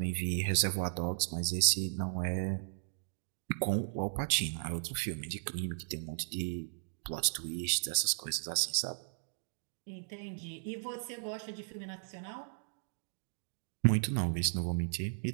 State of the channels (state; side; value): silent; left; digital silence